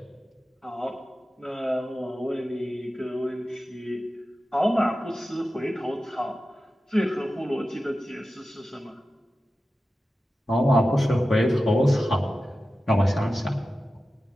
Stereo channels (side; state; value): both; normal; correlation 0.94